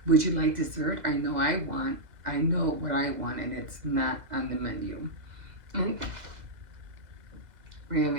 Would you like dessert? I know what I want, and it's not on the menu.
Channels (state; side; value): late; left; 2.0 ms